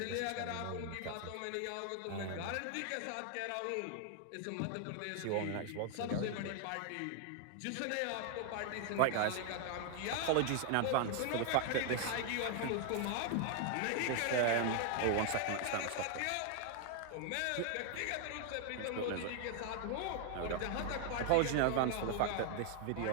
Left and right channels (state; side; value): different; both; correlation 0.00